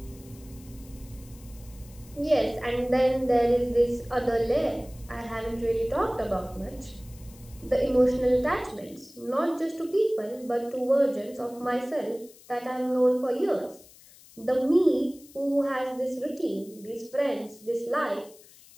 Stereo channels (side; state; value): left; noise; hiss, 23 dB below the sound